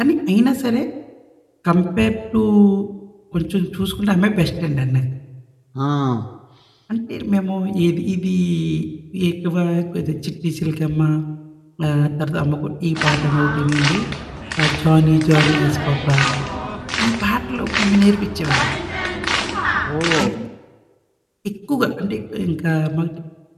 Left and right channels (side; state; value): both; identical; correlation 1.00